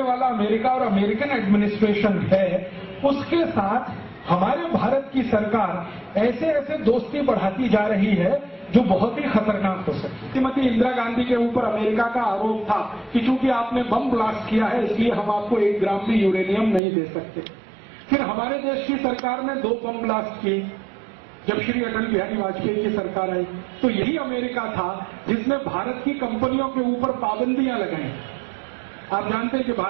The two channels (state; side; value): drops out; left; at 16.8 s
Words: वाला अमेरिका और अमेरिकन एडमिनिस्ट्रेशन है, उसके साथ हमारे भारत की सरकार ऐसे ऐसे दोस्ती बढ़ाती जा रही है जो बहुत ही खतरनाक हो सकती है। श्रीमती इंदिरा गांधी के ऊपर अमेरिका का आरोप था कि चूंकि आपने बम ब्लास्ट किया है इसलिए हम आपको 1 ग्राम भी यूरेनियम नहीं दे सकते। फिर हमारे देश की सरकार ने 2 बम ब्लास्ट किए जब श्री अटल बिहारी वाजपेयी की सरकार आई, तो यही अमेरिका था जिसने भारत की कंपनियों के ऊपर पाबंदियां लगाई। आप जानते हैं कि